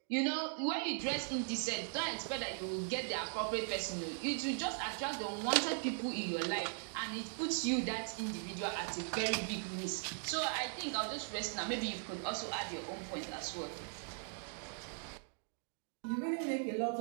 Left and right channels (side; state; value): left; silent; 52 dB below the other